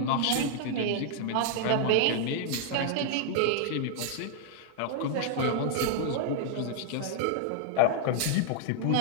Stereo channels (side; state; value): both; different; correlation 0.00